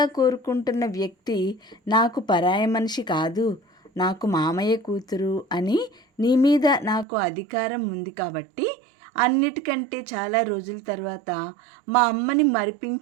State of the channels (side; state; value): left; drops out; at 7.1 s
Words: కోరుకుంటున్న వ్యక్తి నాకు పరాయి మనిషి కాదు, నాకు మామయ్య కూతురు అని నీ మీద నాకు అధికారం ఉంది కాబట్టి అన్నిటికంటే చాలా రోజుల తర్వాత మా అమ్మని